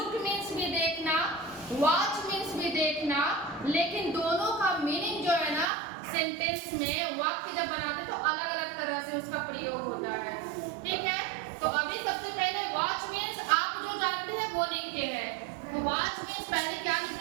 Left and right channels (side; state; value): left; drops out; at 5.7 s